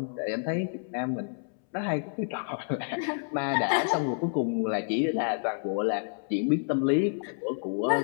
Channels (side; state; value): right; silent; 59 dB below the other